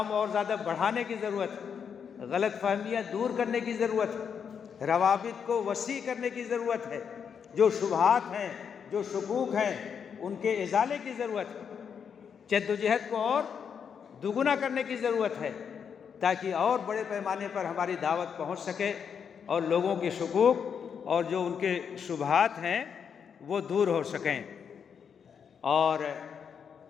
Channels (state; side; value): quieter; right; 7.1 dB